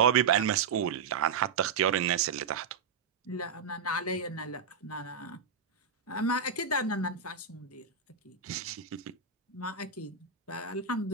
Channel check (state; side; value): quieter; left; 5.8 dB